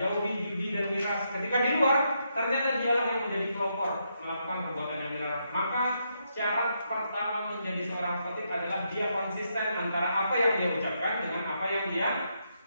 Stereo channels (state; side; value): inverted; both; correlation -0.80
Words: jauhi judi dan miras. Ketika di luar, ternyata dia yang menjadi pelopor melakukan perbuatan yang dilarang. Maka syarat pertama menjadi seorang khatib adalah dia konsisten antara apa yang dia ucapkan dengan apa yang dia